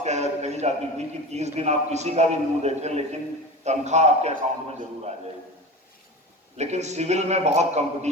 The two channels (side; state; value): both; normal; correlation 0.31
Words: कही जाती थी कि 30 दिन आप किसी का भी मुंह देखें, लेकिन तनख्वाह आपके अकाउंट में जरूर आ जाएगी। लेकिन सिविल में बहुत